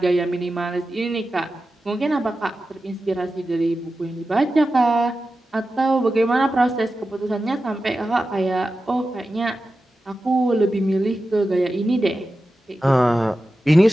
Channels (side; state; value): both; normal; correlation 0.93